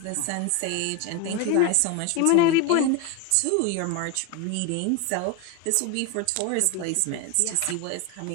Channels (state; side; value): different; both; correlation 0.02